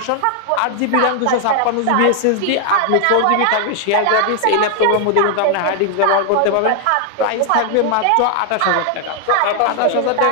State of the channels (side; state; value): both; different; correlation 0.00